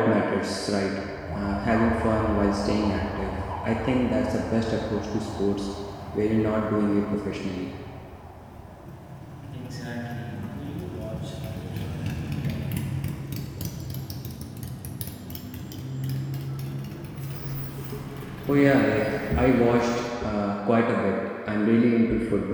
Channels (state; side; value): identical; both; correlation 1.00